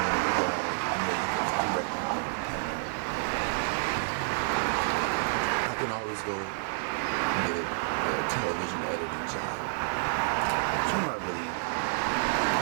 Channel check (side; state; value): left; silent; 58 dB below the other